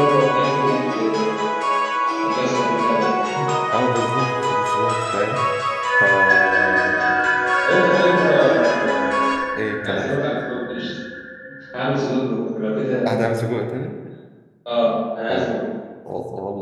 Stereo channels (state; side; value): identical; both; correlation 1.00